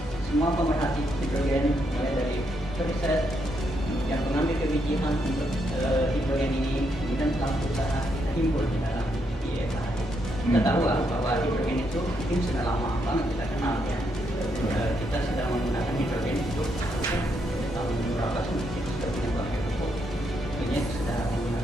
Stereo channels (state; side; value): normal; both; correlation 0.78